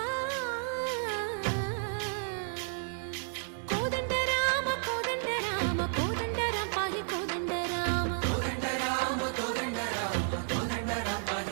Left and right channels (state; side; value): silent; left; digital silence